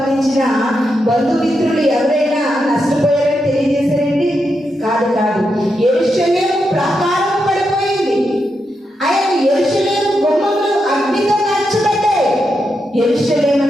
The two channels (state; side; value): normal; both; correlation 0.85